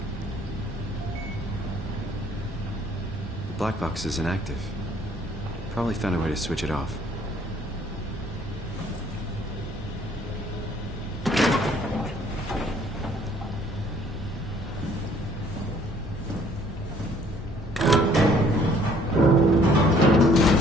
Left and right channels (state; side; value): normal; both; correlation 0.60